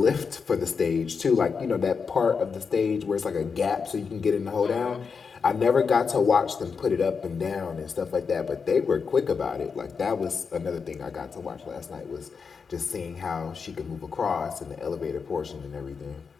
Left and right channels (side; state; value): right; quieter; 5.6 dB